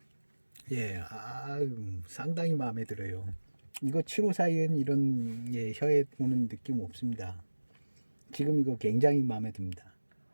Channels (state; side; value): inverted; both; correlation -1.00